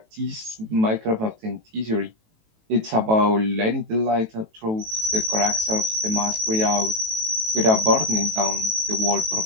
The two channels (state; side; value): late; left; 18 ms